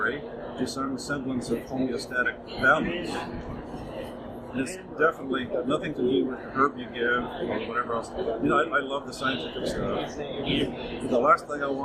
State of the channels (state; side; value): identical; both; correlation 1.00